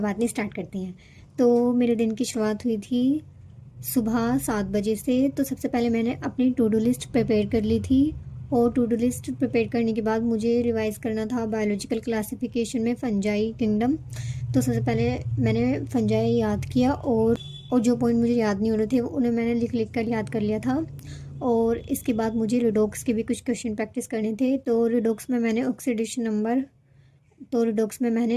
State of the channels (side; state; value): both; identical; correlation 1.00